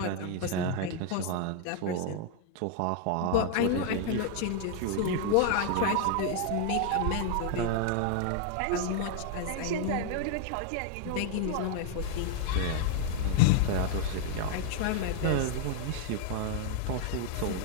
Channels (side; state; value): both; different; correlation 0.00